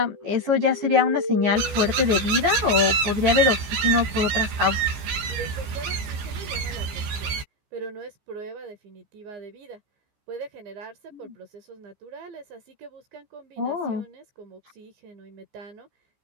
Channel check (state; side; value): late; left; 14 ms